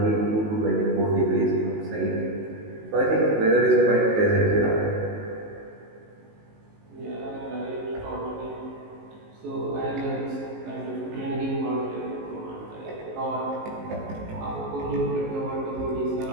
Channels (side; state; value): left; late; 19 ms